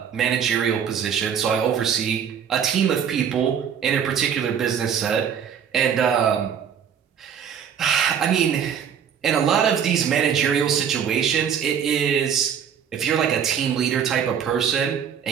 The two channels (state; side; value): quieter; left; 8.0 dB